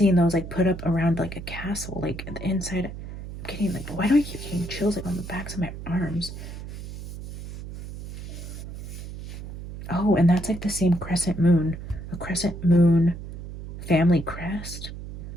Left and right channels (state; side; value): noise; right; hum, 10 dB below the sound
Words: those like put up around like a castle, like the inside. I'm getting like, why do I keep getting chills like on the backs of my arms? Oh, and that's like the same crescent moon. A crescent moon family crest.